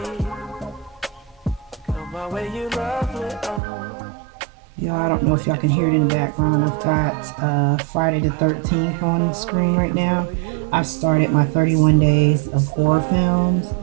Come my way, you lovely. Y'all, I don't know if y'all can hear it in the background. I've got Friday the 13th on the screen right now. I started my 31 days of horror films.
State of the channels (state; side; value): drops out; left; at 3.6 s